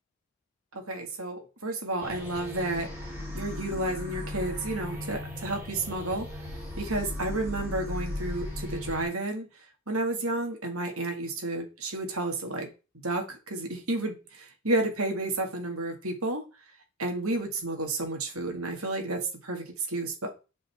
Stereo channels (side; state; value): both; normal; correlation 0.10